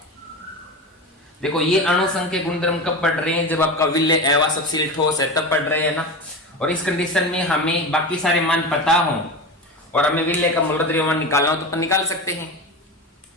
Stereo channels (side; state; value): both; normal; correlation 0.25